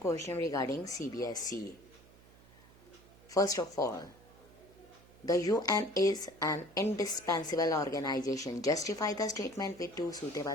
regarding CBSE. First of all, the UN is an indispensable organization. Justify the statement with two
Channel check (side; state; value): right; noise; hum, 24 dB below the sound